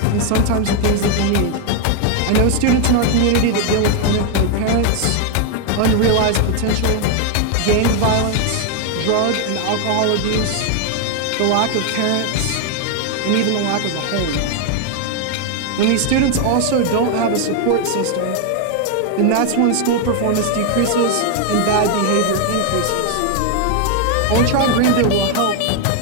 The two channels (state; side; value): different; both; correlation 0.00